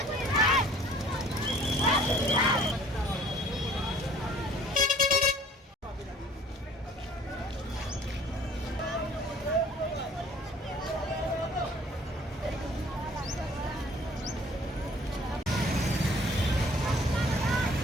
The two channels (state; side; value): normal; both; correlation 0.53